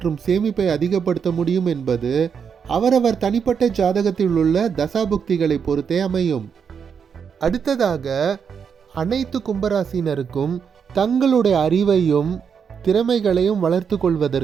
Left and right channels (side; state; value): left; quieter; 6.8 dB